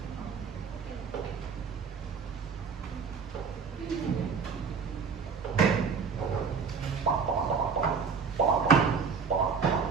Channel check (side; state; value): left; quieter; 5.6 dB